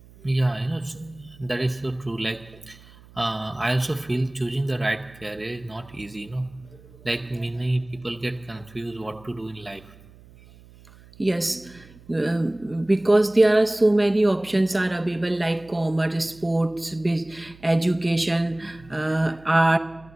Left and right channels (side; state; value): right; noise; hum, 23 dB below the sound